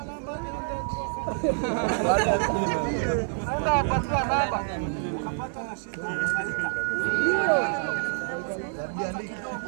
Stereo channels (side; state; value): left; silent; digital silence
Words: namba nenda apatia namba. Ukapata na shida unaita.